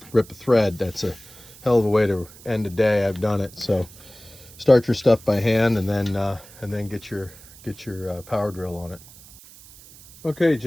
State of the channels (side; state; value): right; noise; hiss, 21 dB below the sound